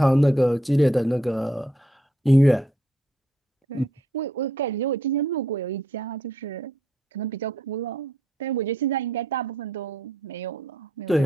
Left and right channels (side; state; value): both; normal; correlation 0.73